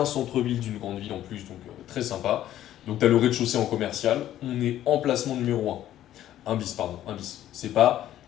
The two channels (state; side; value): quieter; right; 12.5 dB